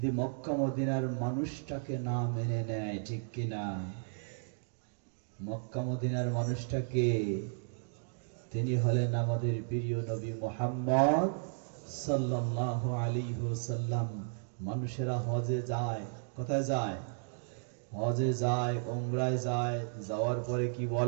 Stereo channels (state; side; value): silent; left; digital silence